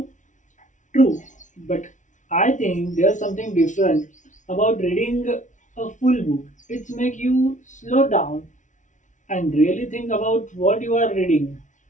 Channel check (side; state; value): right; late; 0.36 ms